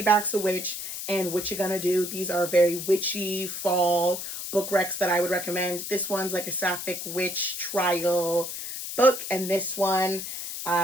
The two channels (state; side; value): noise; left; hiss, 6 dB below the sound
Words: a Witch and What You Gonna Do. These are very witchy fall book recs that I would recommend. This one's like a sapphic witch trial book, and this one,